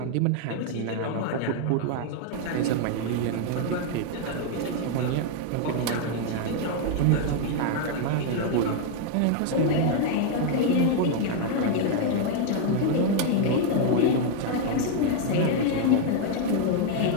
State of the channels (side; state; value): both; different; correlation 0.00